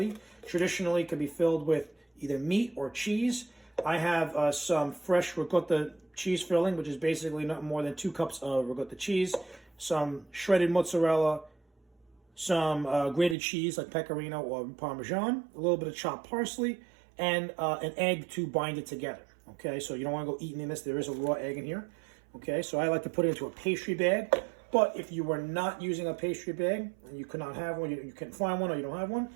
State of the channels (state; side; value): drops out; left; at 13.4 s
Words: traditionally can be filled with either meat or cheese. I have some fresh ricotta cheese filling, which is basically not more than 2 cups of ricotta cheese, some shredded mozzarella, some grated cheese like pecorino or parmesan, a little bit of chopped parsley, and an egg to bind it together. Okay, so you don't want to go eating in this. There is a raw egg in here. Okay, so I like to put it into a pastry bag. But if you were not using a pastry bag and you could not have one, you couldn't find one, or you don't have one,